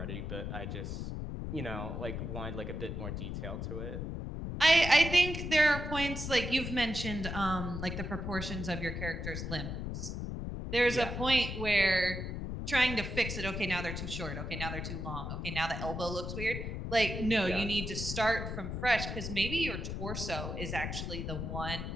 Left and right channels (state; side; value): noise; left; rumble, 4 dB below the sound